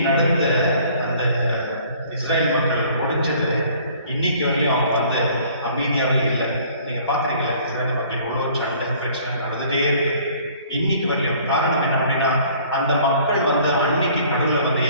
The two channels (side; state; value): both; inverted; correlation -0.54